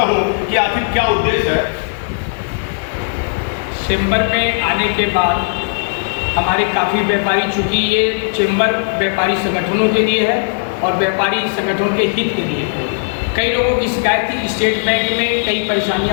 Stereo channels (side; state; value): right; silent; 59 dB below the other